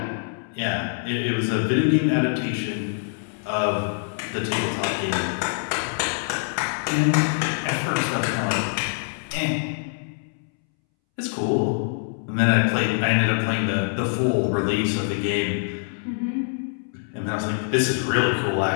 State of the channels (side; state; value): right; silent; 62 dB below the other